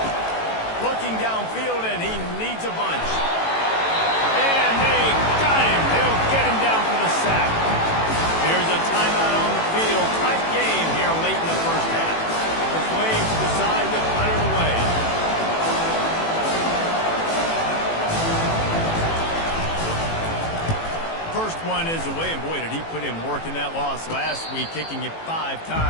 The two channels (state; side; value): late; right; 18 ms